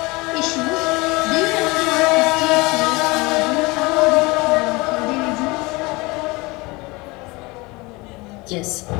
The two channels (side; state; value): right; quieter; 24.1 dB